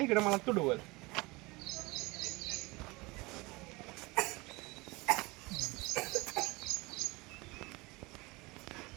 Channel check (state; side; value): quieter; left; 23.8 dB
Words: इकडे मला तुडवल.